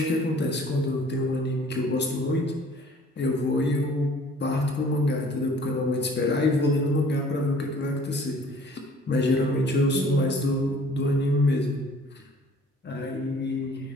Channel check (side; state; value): both; normal; correlation 0.53